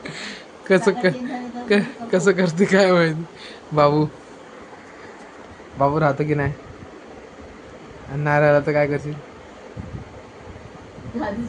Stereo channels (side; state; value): both; identical; correlation 1.00